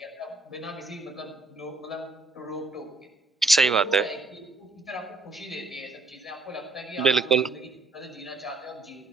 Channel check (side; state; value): left; quieter; 3.4 dB